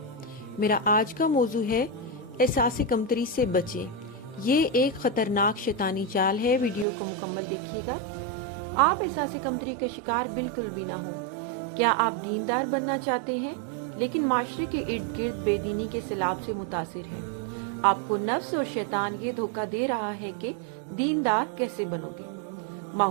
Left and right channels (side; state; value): left; drops out; at 6.9 s